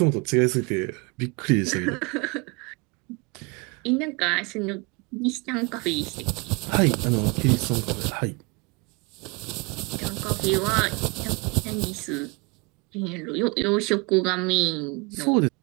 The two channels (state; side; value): quieter; left; 28.6 dB